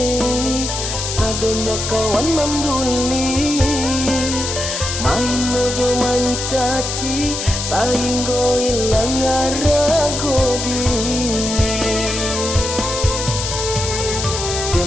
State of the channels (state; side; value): noise; left; hiss, 4 dB below the sound